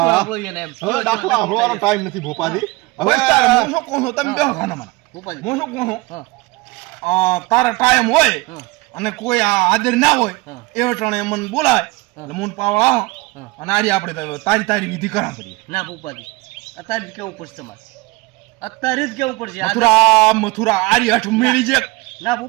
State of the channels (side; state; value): left; quieter; 22.7 dB